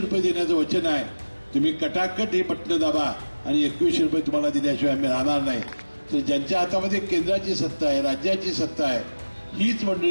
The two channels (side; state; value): both; inverted; correlation -1.00